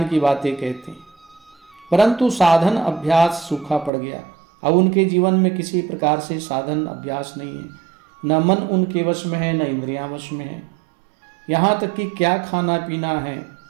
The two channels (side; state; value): left; drops out; at 3.9 s